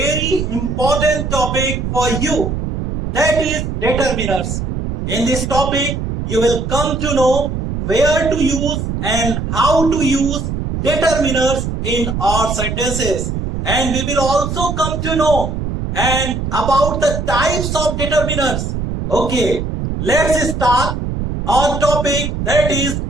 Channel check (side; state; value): right; noise; rumble, 3 dB below the sound